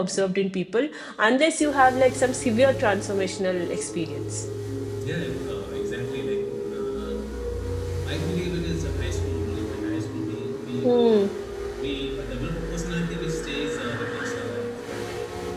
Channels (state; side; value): identical; both; correlation 1.00